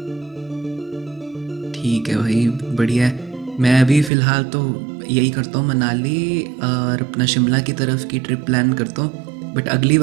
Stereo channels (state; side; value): drops out; left; at 4.1 s